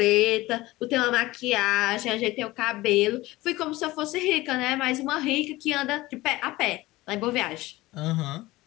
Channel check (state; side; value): quieter; right; 19.0 dB